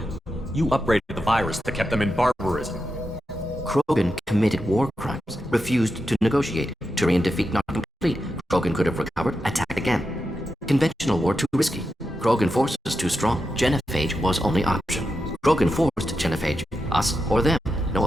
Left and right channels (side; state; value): both; normal; correlation 0.88